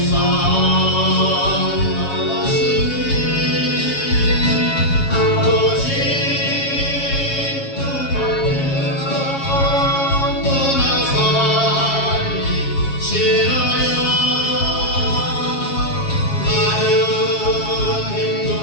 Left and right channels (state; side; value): late; right; 7.3 ms